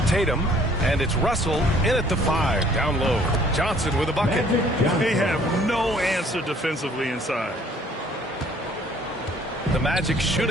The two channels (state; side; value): normal; both; correlation 0.58